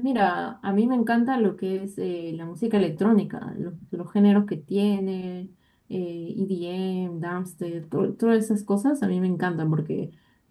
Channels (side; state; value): both; identical; correlation 1.00